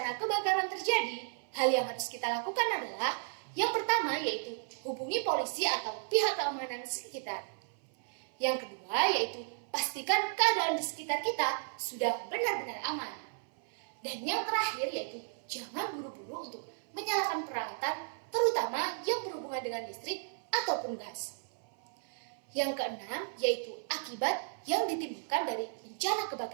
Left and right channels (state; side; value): silent; left; 55 dB below the other